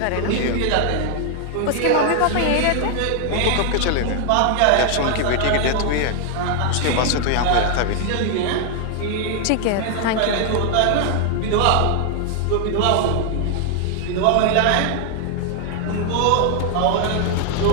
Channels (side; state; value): both; different; correlation 0.00